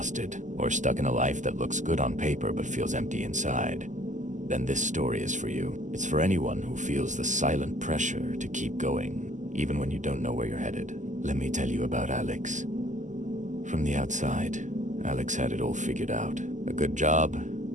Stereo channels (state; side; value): late; left; 0.36 ms